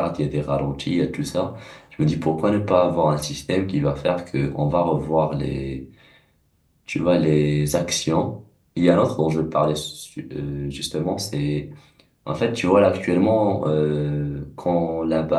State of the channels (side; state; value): both; identical; correlation 1.00